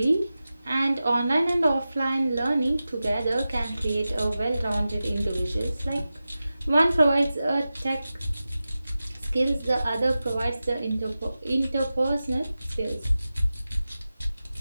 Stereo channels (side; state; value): both; inverted; correlation -0.94